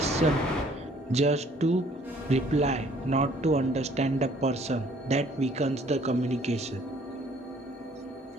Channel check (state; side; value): normal; both; correlation 0.59